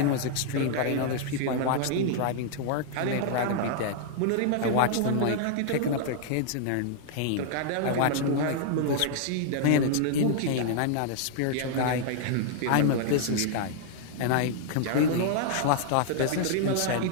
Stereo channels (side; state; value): both; different; correlation -0.01